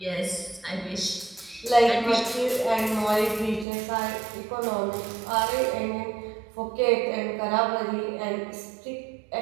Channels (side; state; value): left; drops out; at 3.7 s